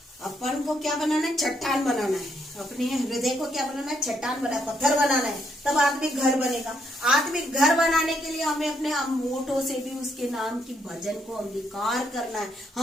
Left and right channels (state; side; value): normal; both; correlation 0.74